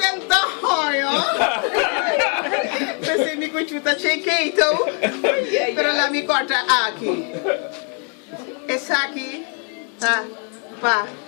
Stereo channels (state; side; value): quieter; right; 39.6 dB